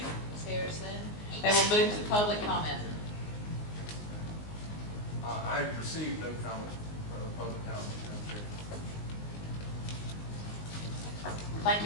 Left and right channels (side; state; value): right; late; 19 ms